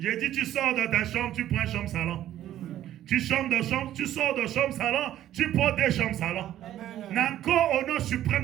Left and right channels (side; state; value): left; quieter; 12.4 dB